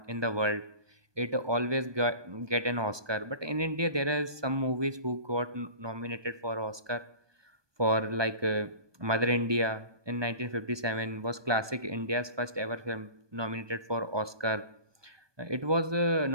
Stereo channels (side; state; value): left; late; 1.2 ms